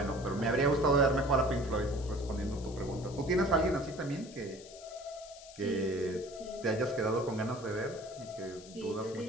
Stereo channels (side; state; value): left; noise; hiss, 18 dB below the sound